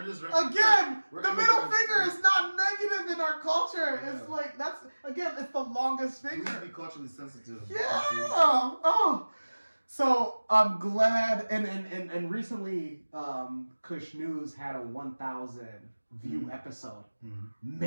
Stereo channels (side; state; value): both; inverted; correlation -1.00